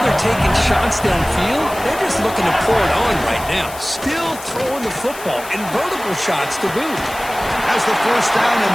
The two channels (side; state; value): left; noise; hiss, 15 dB below the sound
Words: they're taking shots downfield. They're just looking to pour it on right now. Still throwing the football, and vertical shots to boot. Has the first down